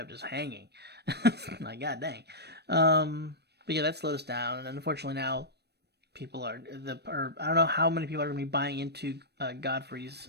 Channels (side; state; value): left; late; 0.48 ms